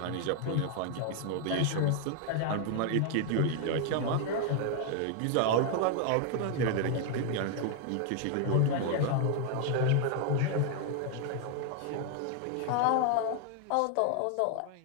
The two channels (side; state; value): both; different; correlation 0.00